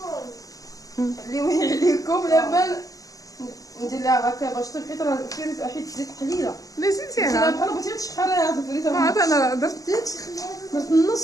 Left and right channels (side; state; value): right; late; 0.17 ms